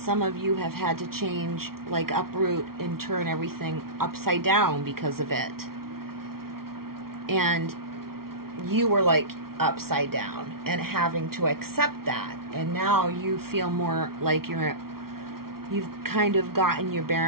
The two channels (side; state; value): left; late; 0.94 ms